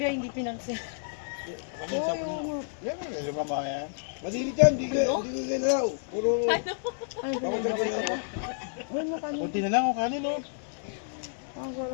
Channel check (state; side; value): silent; right; digital silence